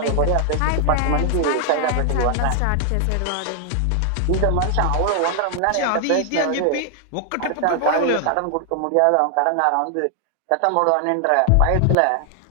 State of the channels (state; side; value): different; both; correlation 0.00